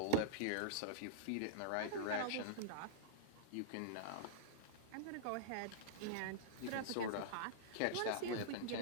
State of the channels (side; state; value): both; different; correlation -0.02